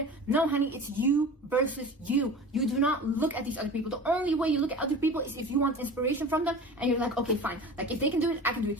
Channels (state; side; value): normal; both; correlation 0.36